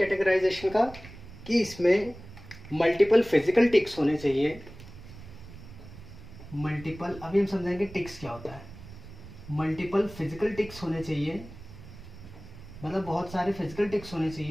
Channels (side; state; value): right; noise; rumble, 16 dB below the sound